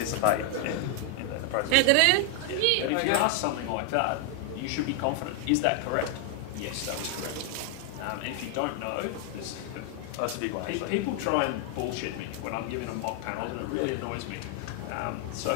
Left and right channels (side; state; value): both; different; correlation 0.00